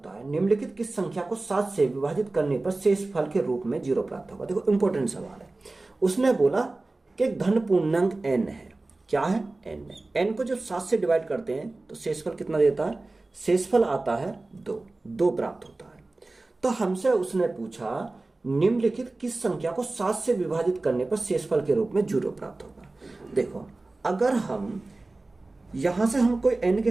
है। निम्नलिखित किस संख्या को 7 से विभाजित करने पर शेषफल के रूप में 0 प्राप्त होगा। देखो इंपॉर्टेंट सवाल है। उसने बोला कि धन पूर्णांक n है, क्या है, n है। n को जब 7 से डिवाइड करते हैं तो शेषफल कितना देता है, शेषफल आता है 2 प्राप्त होता है। तो हमसे उसने पूछा निम्नलिखित किस संख्या को 7 से विभाजित करने पर शेषफल के रूप में 0 प्राप्त होगा। देखो अगर हम यहां से हम कोई n के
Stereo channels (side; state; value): left; quieter; 3.1 dB